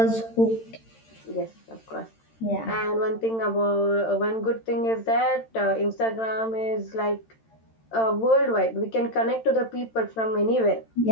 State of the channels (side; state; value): right; late; 13 ms